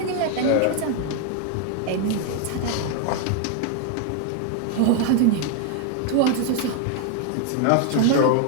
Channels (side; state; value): both; different; correlation 0.00